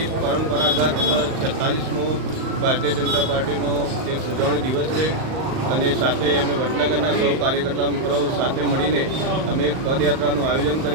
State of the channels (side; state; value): left; late; 38 ms